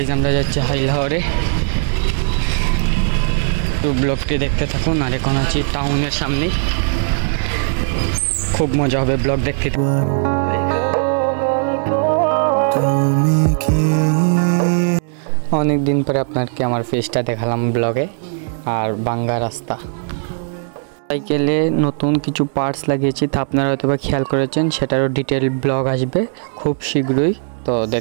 আমরা যাচ্ছি হাইলাহরে, তো ব্লগটি দেখতে থাকুন। আর এখন আছি টাউনের সামনে, খুব মজা হবে ব্লগ দেখতে। অনেক দিন পরে আপনাকে আমার ফেসটা দেখালাম ব্লগে। আর বাঙ্গা রাস্তা, সাইকেলে নতুন কিছু পার্টস লাগিয়েছি, তা আপনারা হয়তো বা খেয়াল করেছেন। সেটারও ডিটেল ব্লগ আসবে খুব শীঘ্রই, তো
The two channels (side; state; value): left; silent; digital silence